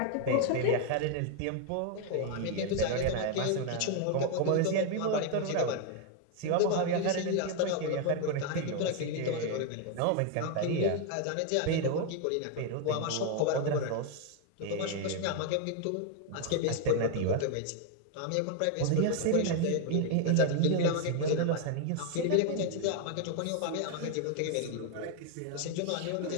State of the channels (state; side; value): different; both; correlation 0.00